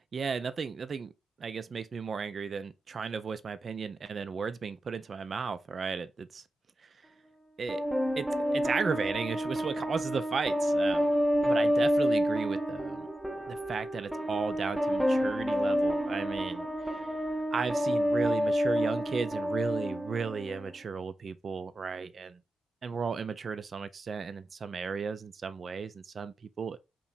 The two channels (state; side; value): normal; both; correlation 0.92